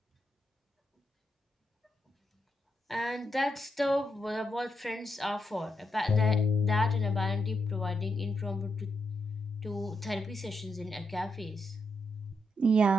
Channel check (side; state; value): both; normal; correlation 0.82